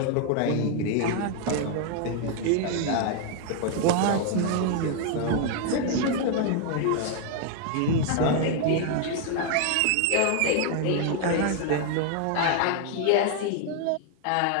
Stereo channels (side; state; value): both; different; correlation 0.00